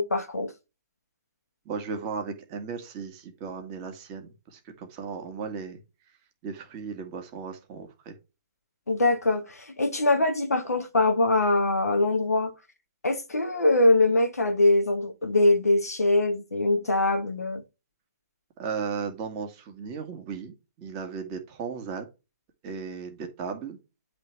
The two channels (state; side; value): inverted; both; correlation -0.73